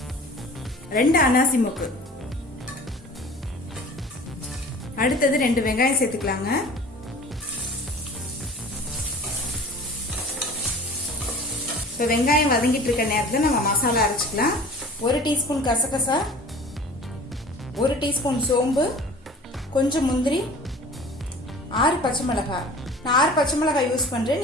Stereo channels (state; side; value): normal; both; correlation 0.43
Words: 2 அன்னாசி முக்கு. அடுத்தது 2 வெங்காயம் சேர்த்துக்கலாங்க. இப்போ வெங்காயம் வதங்கிட்டு இருக்க நேரத்தில் நம்ம மசாலா அரைச்சிக்கலாம். 1 டீஸ்பூன் கசகசா, 1 டீஸ்பூன் சோம்பு, கொஞ்சம் முந்திரி, 6 பச்சை மிளகாய். நான் 6 பச்சை மிளகாய் யூஸ் பண்றேன்.